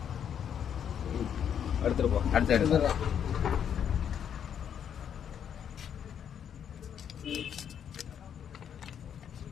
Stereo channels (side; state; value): right; quieter; 8.6 dB